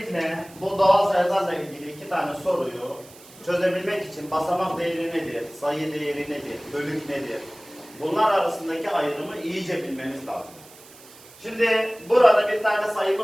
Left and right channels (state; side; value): noise; right; hiss, 22 dB below the sound